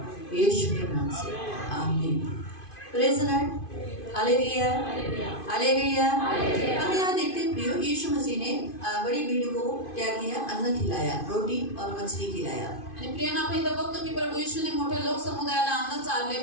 यीशु के नाम से आमीन। Praise the Lord, hallelujah, hallelujah. हम यहाँ देखते हैं प्रियो, यीशु मसीह ने बड़ी भीड़ को क्या किया? अन्न खिलाया, रोटी और मछली खिलाया। आणि प्रियांनो, आपण इथं बघतो की प्रभू येशूने मोठ्या लोक समुदायाला अन्न चारले,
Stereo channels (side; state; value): right; late; 2.5 ms